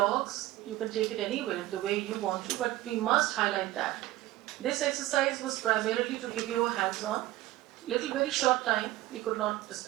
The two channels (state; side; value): quieter; left; 16.5 dB